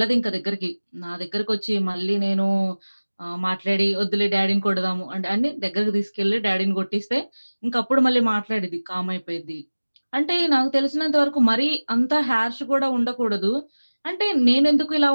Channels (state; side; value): inverted; both; correlation -1.00